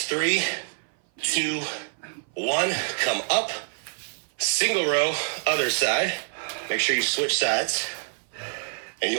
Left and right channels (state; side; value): silent; left; 57 dB below the other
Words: 3, 2, 1. Come up. Single row, other side. Make sure you switch sides. And